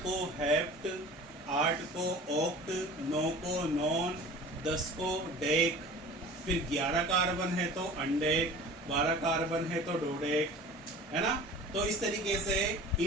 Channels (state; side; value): normal; both; correlation 0.41